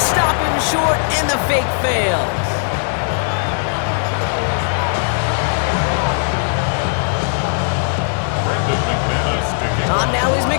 him short, and the fake fails. On now is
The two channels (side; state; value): right; silent; 67 dB below the other